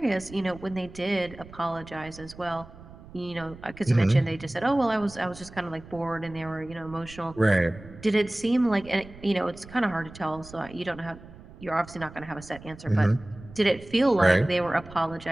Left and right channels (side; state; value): right; noise; rumble, 18 dB below the sound